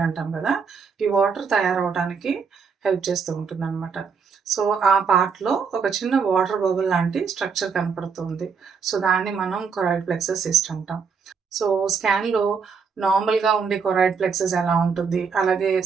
అంటాం కదా, ఈ వాటర్ తయారవడానికి హెల్ప్ చేస్తూ ఉంటుంది అనమాట. సో ఆ పార్ట్‌లో ఒక చిన్న వాటర్ బబుల్ లాంటి స్ట్రక్చర్ కనపడుతుంది. సో దాన్ని మనం కొరాయిడ్ ప్లెక్సస్ సిస్ట్ అంటాం. సో స్కాన్‌లో నార్మల్‌గా ఉండే కొరాయిడ్ ప్లెక్సస్ ఎలా ఉంటుంది? అలాగే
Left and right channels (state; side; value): quieter; left; 5.7 dB